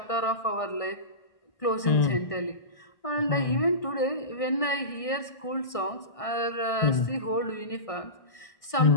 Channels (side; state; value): right; late; 1.6 ms